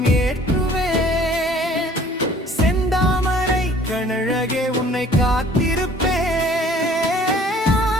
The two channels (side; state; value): both; normal; correlation 0.53